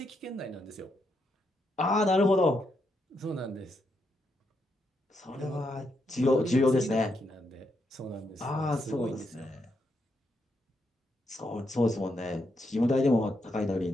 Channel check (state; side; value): normal; both; correlation 0.80